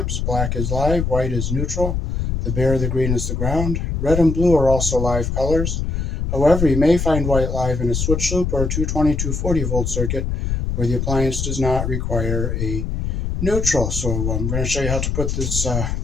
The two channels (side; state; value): left; noise; rumble, 1 dB below the sound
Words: Black is live, white is neutral, the bare, the green is the ground. Red and blue are also live colors. However, you may find white live in a switch loop or a 220-240 volt circuit where the appliance does not require a neutral. So I'm going to show you how to put this